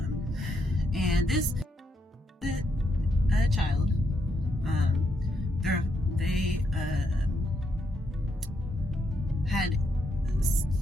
And this child, they had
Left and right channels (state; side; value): normal; both; correlation 0.79